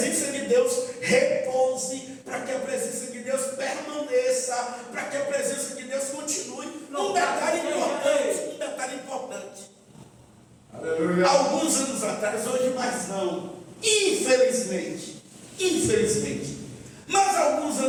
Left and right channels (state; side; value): identical; both; correlation 1.00